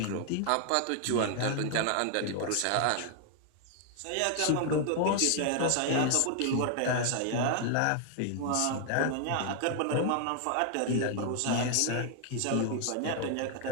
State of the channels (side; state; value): both; different; correlation 0.00